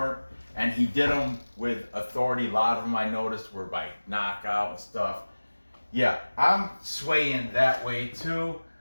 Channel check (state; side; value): inverted; both; correlation -1.00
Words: and he did them with authority. A lot of them I noticed were by knockout and stuff. Yeah, I'm swaying that way too.